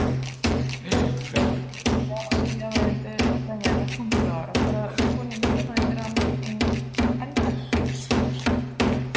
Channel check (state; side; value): identical; both; correlation 1.00